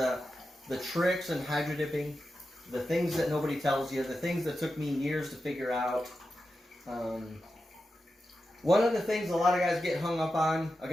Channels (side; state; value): both; normal; correlation 0.90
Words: tricks in hydro dipping, the things that nobody tells you, the things that took me years to figure out. One of the things a lot of guys get hung up on, I'm